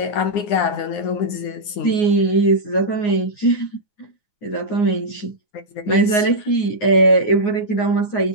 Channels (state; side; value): late; right; 9.7 ms